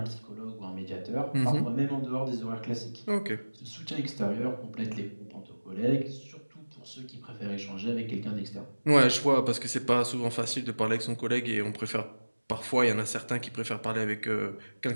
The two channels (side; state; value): both; inverted; correlation -1.00